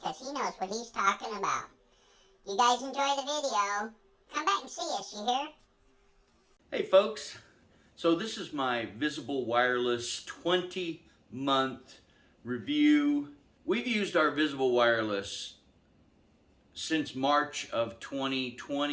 he knows what he's talking about. You guys enjoy the video. Come back and see us, you hear? Hey folks, so this is my Visible Wireless 20-month review. We've used our Visible Wireless since March of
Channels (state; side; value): identical; both; correlation 1.00